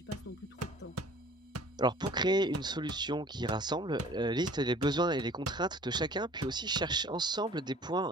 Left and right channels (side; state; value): both; normal; correlation 0.50